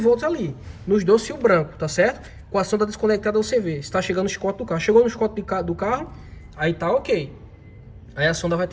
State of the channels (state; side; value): identical; both; correlation 1.00